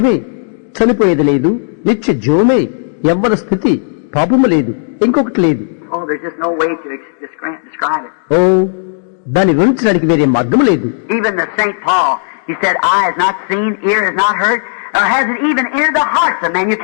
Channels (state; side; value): silent; right; digital silence